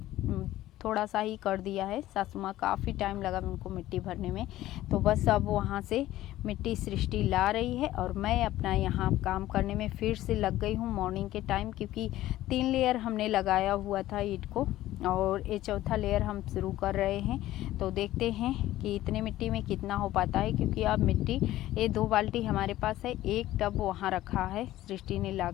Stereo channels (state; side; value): quieter; right; 14.9 dB